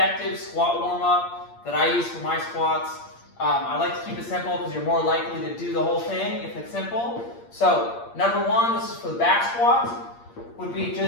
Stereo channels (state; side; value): late; right; 8.6 ms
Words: squat warm-up that I use for my squats. I like to keep it simple because you're more likely to do the whole thing if it's simple. So, number one, this is for the back squats, would be